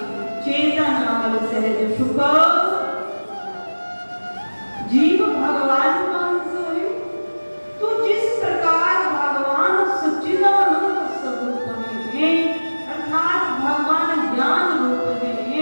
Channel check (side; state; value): both; inverted; correlation -1.00